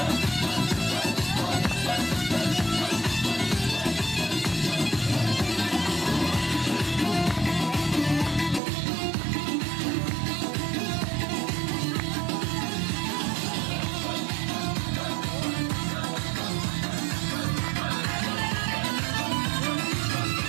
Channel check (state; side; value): drops out; left; at 8.6 s